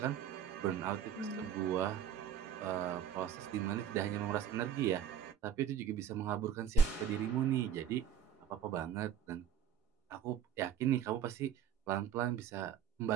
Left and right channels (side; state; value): left; quieter; 8.9 dB